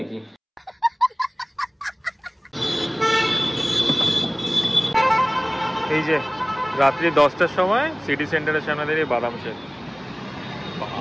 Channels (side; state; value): both; identical; correlation 1.00